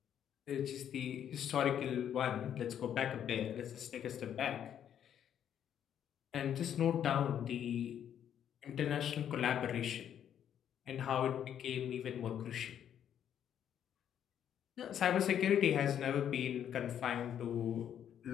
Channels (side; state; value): right; quieter; 9.5 dB